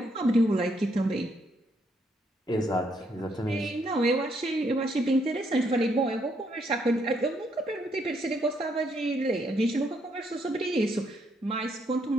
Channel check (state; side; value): normal; both; correlation 0.73